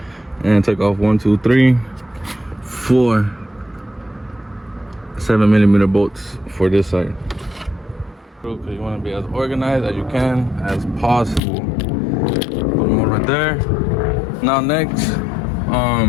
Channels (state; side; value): drops out; right; at 11.4 s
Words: and take off 1, 2, 3, 4 7mm bolts for this side. Okay, you wanna be as organized as you can, as possible. Put them all right there. Now next,